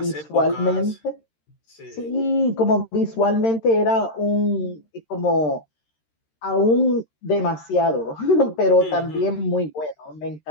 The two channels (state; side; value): late; right; 13 ms